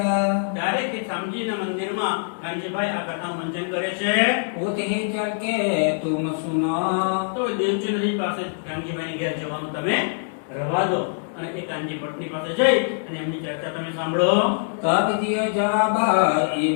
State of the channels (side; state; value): right; silent; digital silence